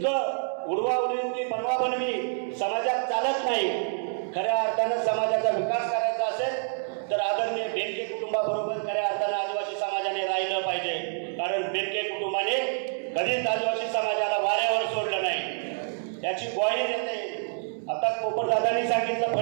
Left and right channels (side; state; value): left; silent; digital silence